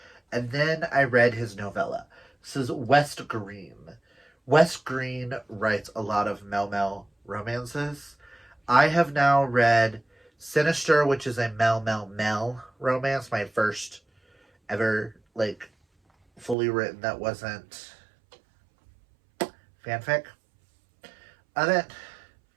and then I read his novella. This is West Green. West Green writes a lot of Mel romances. I have now read Sinister, which is a Mel romance, my first ever, like, fully written that wasn't fanfic of it.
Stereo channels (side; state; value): left; drops out; at 16.6 s